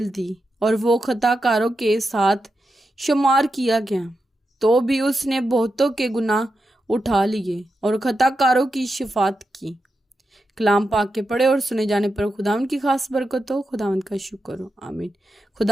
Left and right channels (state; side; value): normal; both; correlation 0.88